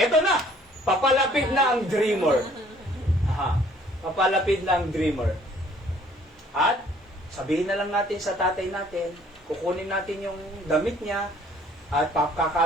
na, papalapit na ang dreamer. Aha, papalapit na ang dreamer. At, sabihin na lang natin sa tatay natin, kukunin natin yung damit niya, at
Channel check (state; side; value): normal; both; correlation 0.58